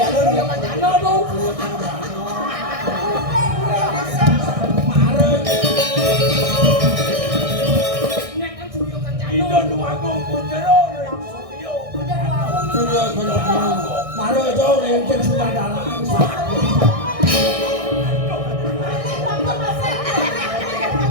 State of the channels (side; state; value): left; late; 1.6 ms